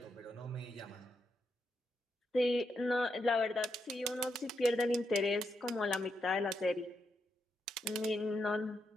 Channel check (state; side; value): normal; both; correlation 0.82